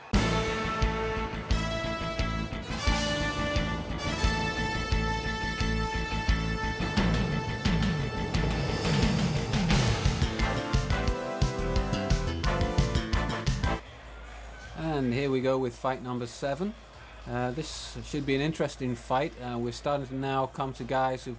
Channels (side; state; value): both; identical; correlation 1.00